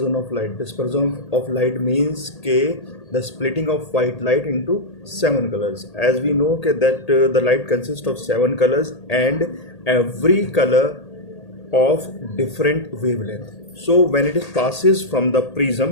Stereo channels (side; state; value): right; late; 1.8 ms